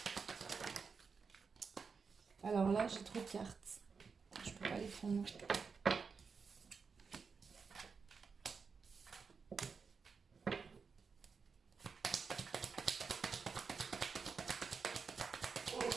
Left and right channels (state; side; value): quieter; left; 5.3 dB